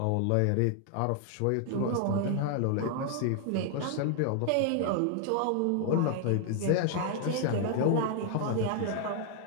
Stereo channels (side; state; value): both; different; correlation 0.00